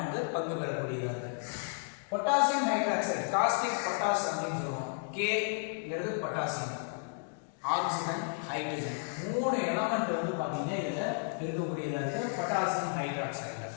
வந்து பங்கு பெறக்கூடியதா இருக்கு. பொட்டாசியம் ஹைட்ராக்சைடு காஸ்டிக் பொட்டாஸ் அப்படின்னு சொல்லுவோம். Kங்கிறது பொட்டாசியம், ஆக்சிஜன், ஹைட்ரஜன் மூணு எலமெண்ட் வந்து பாத்தீங்கன்னா இதுல இருக்கக்கூடியதா இருக்கு பொட்டாசியம் ஹைட்ராக்சைடுல.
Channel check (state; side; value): silent; right; 56 dB below the other